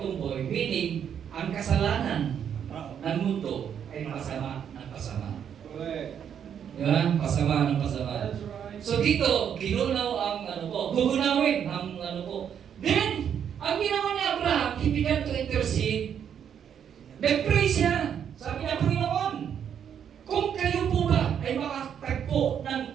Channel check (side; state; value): left; quieter; 8.5 dB